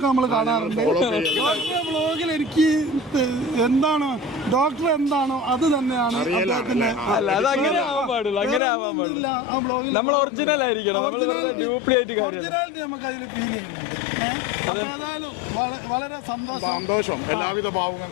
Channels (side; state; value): right; drops out; at 8.6 s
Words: നമ്മൾ കാണാറുണ്ട്. ഡോക്ടറെ വ്ളോഗിൽ എനിക്ക് എന്താണ് ഡോക്ടർ എന്താണോ അത് തന്നെയാണ് അദ്ദേഹത്തിന്റെ. ഒറിജിനാലിറ്റി നമുക്ക് അതിൽ ഫീൽ ചെയ്യുന്നുണ്ട്. അപ്പൊ ഏതായാലും വളരെ സന്തോഷം. എല്ലാവിധ